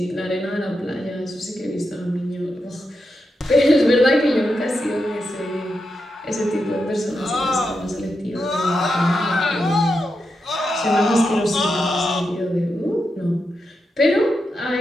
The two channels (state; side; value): normal; both; correlation 0.87